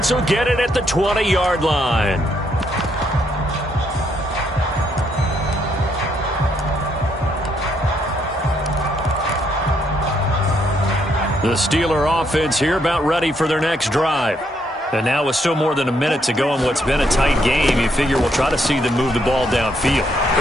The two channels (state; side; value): normal; both; correlation 0.73